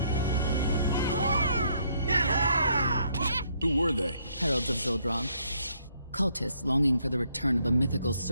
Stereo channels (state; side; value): inverted; both; correlation -0.70